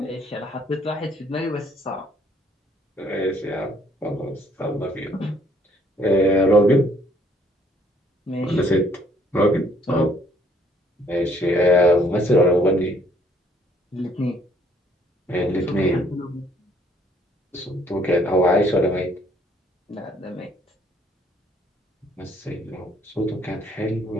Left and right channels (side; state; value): both; normal; correlation 0.64